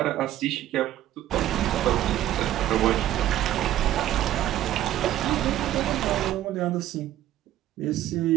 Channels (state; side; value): quieter; left; 13.0 dB